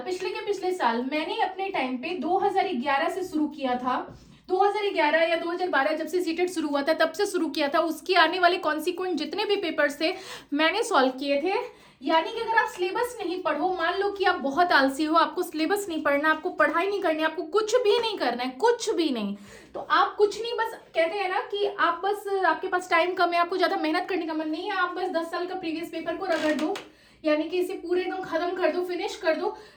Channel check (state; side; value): identical; both; correlation 1.00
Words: साल मैंने अपने टाइम पे 2011 से शुरू किया था। 2011 या 2012 जब से सीटेट शुरू हुआ था तब से शुरू किया था। उसकी आने वाले कॉन्सिक्वेंट जितने भी पेपर्स थे मैंने सॉल्व किए थे। यानी कि अगर आप सिलेबस नहीं पढ़ो, मान लो कि आप बहुत आलसी हो, आपको सिलेबस नहीं पढ़ना, आपको पढ़ाई नहीं करनी, आपको कुछ भी नहीं करना है, कुछ भी नहीं, तो आप कुछ नहीं, बस कहते हैं ना कि आप बस, आपके पास टाइम कम है, आपको ज्यादा मेहनत करने का मन नहीं है, आप बस 10 साल का प्रीवियस पेपर को रगड़ दो, यानी कि इसे पूरे एकदम खत्म कर दो, फिनिश कर दो,